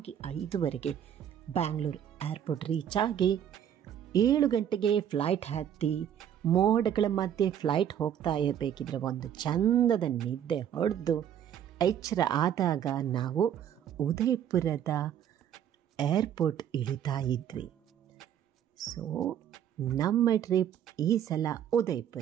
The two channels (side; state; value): left; quieter; 9.7 dB